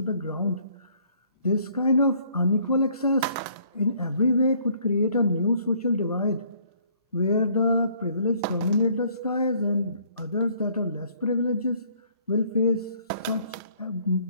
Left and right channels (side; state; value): both; inverted; correlation -0.62